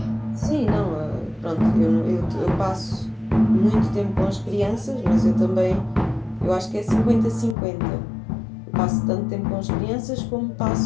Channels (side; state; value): right; drops out; at 7.6 s